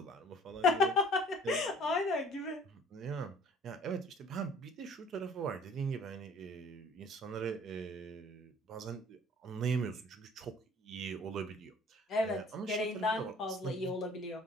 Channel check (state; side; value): normal; both; correlation 0.52